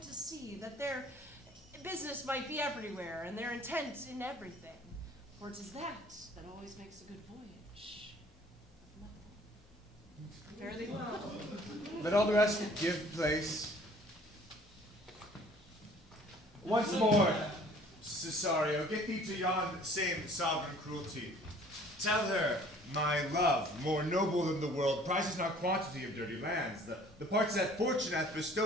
to sea, that their business might be everywhere, and their intent in everything. For it is that always makes a good voyage. Fare thee well. Let all the rest give place. Once more, Cesario, get thee to yon same sovereign cruelty. Tell her, my love, more noble than the world, prizes not quantity of dirty lands. The parts that fortune hath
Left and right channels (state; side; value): normal; both; correlation 0.53